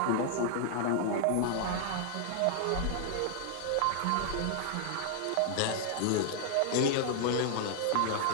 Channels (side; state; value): both; different; correlation -0.01